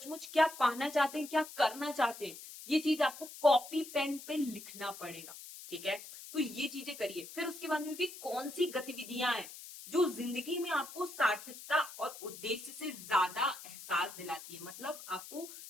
क्या पाना चाहते हैं, क्या करना चाहते हैं, ये चीज आपको कॉपी पेन पे लिखना पड़ेगा। ठीक है, तो ये चीजें करिए। फिर उसके बाद में भी कौन सी गतिविधियां हैं जो जिंदगी में आपको सार्थकता और उद्देश्य से ज्यादा एहसास दिलाती है। मतलब आपको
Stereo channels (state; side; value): noise; left; hiss, 14 dB below the sound